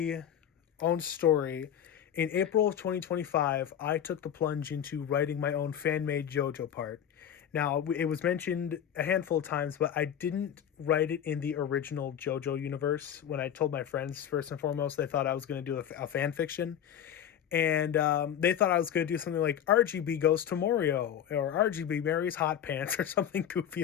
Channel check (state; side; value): quieter; right; 9.5 dB